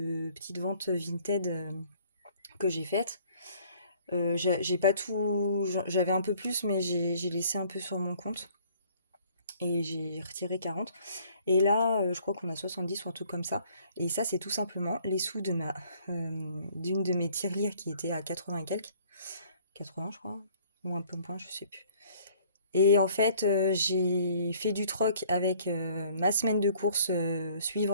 petites ventes Vinted que j'ai faites. J'ai pas tout, j'avais un peu plus, mais j'ai laissé un peu sur mon compte et j'ai retiré 40. Et là, je crois qu'on a 70 ou un truc comme ça. Et ça, c'est tout simplement les sous de d'une de mes tirelires qui était à 80 et quelques. 80, je crois. Ou un peu moins, je sais plus. Et en fait, j'ai fait du troc avec ma semaine de course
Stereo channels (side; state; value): both; inverted; correlation -0.57